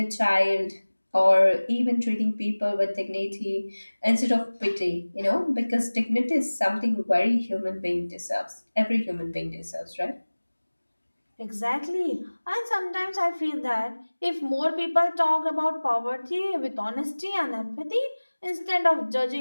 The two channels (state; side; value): inverted; both; correlation -1.00